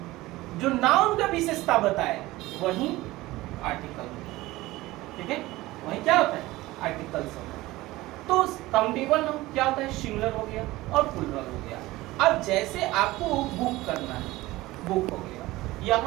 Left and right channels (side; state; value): left; quieter; 18.7 dB